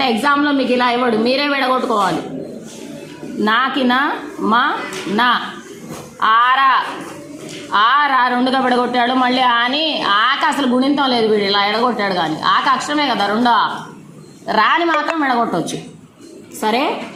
ఎగ్జామ్లో మీకు ఇలా ఇవ్వడు, మీరే విడగొట్టుకోవాలి. నాకిన మా నా ఆరా ఆరా రెండుగా విడగొట్టాడు. మళ్ళీ ఆని ఆక అసలు గుణింతం లేదు, వీడు ఇలా ఎడగొట్టాడు. కానీ ఆక అక్షరమే కదా, రెండో రాని మాత్రం విడగొట్టవచ్చు. సరే,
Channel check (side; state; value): both; identical; correlation 1.00